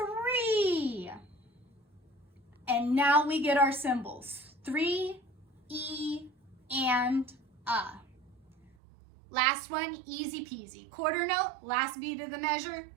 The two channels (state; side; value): drops out; left; at 8.8 s